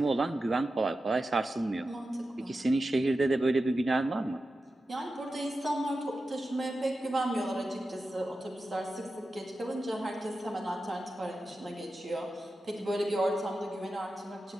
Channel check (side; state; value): both; normal; correlation 0.92